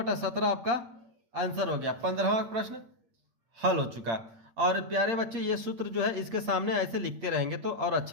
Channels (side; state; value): left; late; 8.5 ms